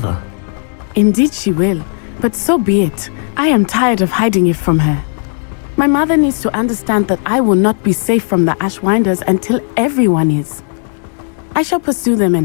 Indeed she will, but so be it. I am tired of hiding it from her. My mother needs to understand that I will not be safe from the Ashwinders until everyone is. I shall pursue them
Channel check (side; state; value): right; silent; 57 dB below the other